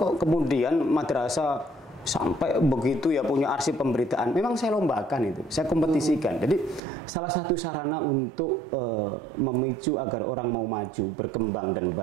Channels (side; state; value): left; drops out; at 6.8 s